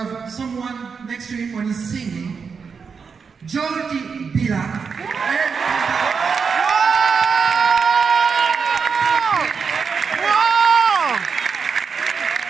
someone next to him when he's singing, Jordi Villa.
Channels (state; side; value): quieter; left; 5.7 dB